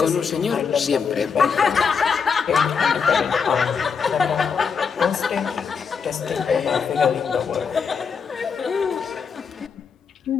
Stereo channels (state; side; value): quieter; right; 6.0 dB